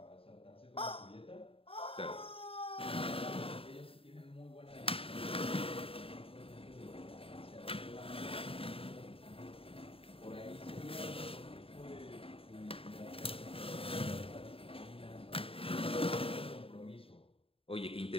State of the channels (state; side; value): late; right; 0.27 ms